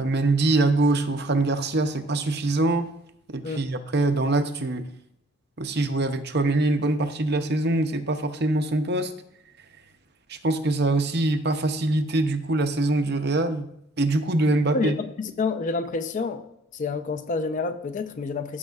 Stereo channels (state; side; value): normal; both; correlation 0.59